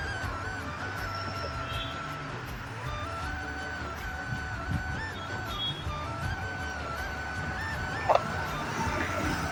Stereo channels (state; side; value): identical; both; correlation 1.00